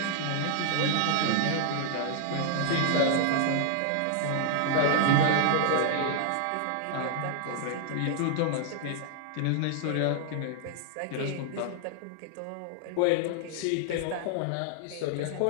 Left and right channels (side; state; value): both; different; correlation -0.01